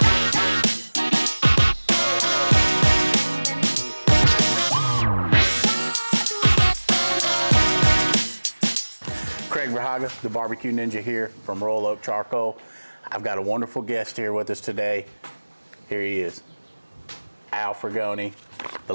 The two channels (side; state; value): both; inverted; correlation -1.00